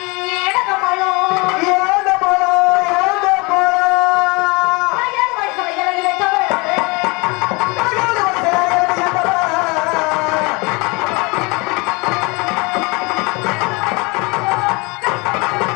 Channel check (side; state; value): right; quieter; 27.1 dB